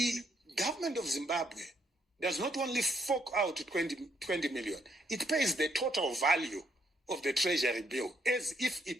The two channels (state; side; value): normal; both; correlation 0.73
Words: government of Zimbabwe does not only fork out 20 million, it pays the total value of the treasury bill as if